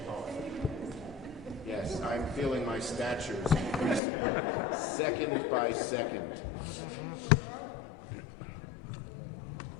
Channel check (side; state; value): right; drops out; at 4.0 s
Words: Yes, I'm feeling my stature is increasing second by second.